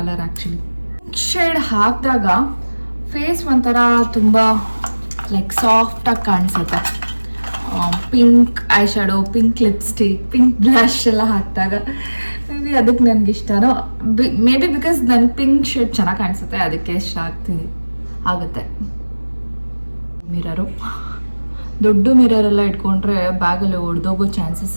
ಆ್ಯಕ್ಚುಲಿ. ಶೇಡ್ ಹಾಕಿದಾಗ ಫೇಸ್ ಒಂಥರ ತುಂಬ ಲೈಕ್ ಸಾಫ್ಟಾಗಿ ಕಾಣಿಸುತ್ತೆ. Pink I shadow, pink lipstick, pink blush ಎಲ್ಲ ಹಾಕಿದಾಗ ಮೇ ಬಿ ಅದಕ್ಕೆ ನನಗೆ ಇಷ್ಟನೋ. ಮೇ ಬಿ ಬಿಕಾಸ್ ನನಗೆ ಪಿಂಕ್ ಶೇಡ್ ಚೆನ್ನಾಗಿ ಕಾಣಿಸುತ್ತೆ, ಅದಕ್ಕೆ ಇಷ್ಟ ಆಗುತ್ತೆ. ಮಿರರು, ದೊಡ್ಡ ಮಿರರೆಲ್ಲ ಇಟ್ಕೊಂಡ್ರೆ ಬ್ಯಾಗಲ್ಲಿ ಒಡೆದೋಗೋ ಚಾನ್ಸಸ್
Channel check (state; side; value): inverted; both; correlation -1.00